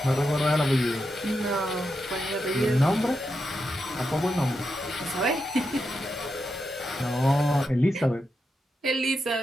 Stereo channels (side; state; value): both; normal; correlation 0.86